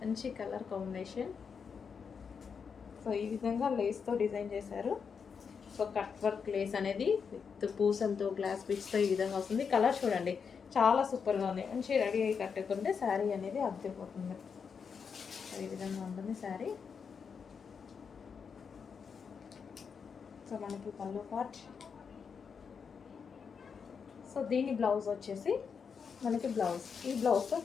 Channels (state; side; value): quieter; right; 6.2 dB